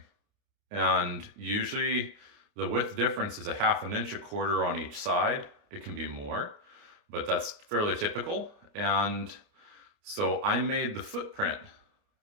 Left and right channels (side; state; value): left; late; 29 ms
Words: And usually the width difference is a half an inch, a quarter on each side. It can be more, but that's fairly typical. And so I made the footprint